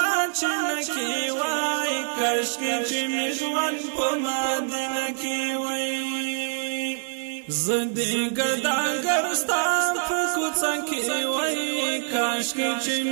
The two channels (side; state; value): left; silent; digital silence